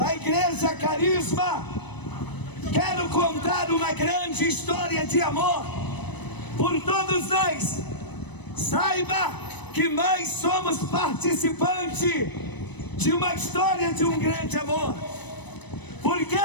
Igreja Carisma. Quero contar uma grande história de amor por todos nós. Saiba que nós somos participantes de uma história de um grande amor, porque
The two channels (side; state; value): right; late; 0.99 ms